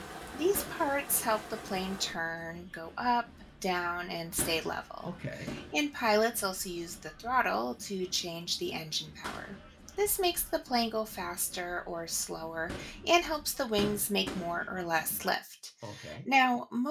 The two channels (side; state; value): both; identical; correlation 1.00